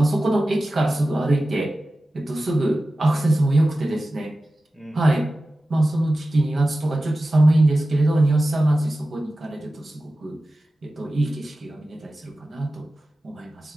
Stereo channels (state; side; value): normal; both; correlation 0.95